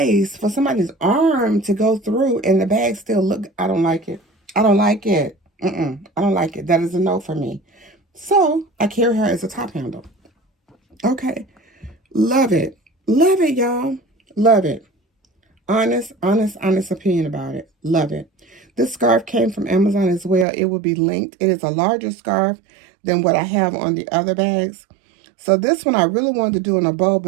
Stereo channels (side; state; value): left; drops out; at 20.5 s